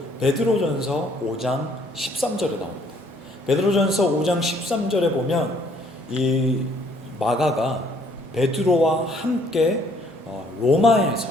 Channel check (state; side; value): normal; both; correlation 0.63